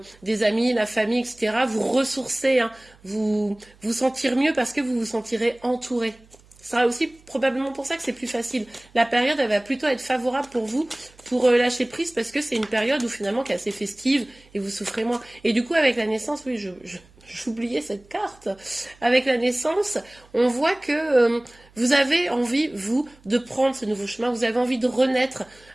des amis, la famille, etc. Vous ressourcer, hein, vous sentir mieux parce que vous vous sentirez entouré. Ce sera aussi probablement pour ça que c'est plus facile. La période, elle va plutôt être favorable pour vous, pour lâcher prise, parce que c'est une période où finalement qui est assez festive et vous souffrez moins. Et du coup, avec la naissance, oui, j'oubliais cette carte. Avec la naissance, on voit que vous avez envie, vous, de prendre ce nouveau chemin. Vous avez envie de renaître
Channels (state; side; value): noise; right; hum, 28 dB below the sound